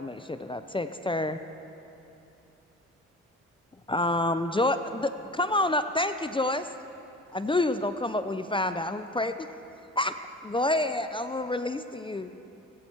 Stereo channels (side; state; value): both; normal; correlation 0.38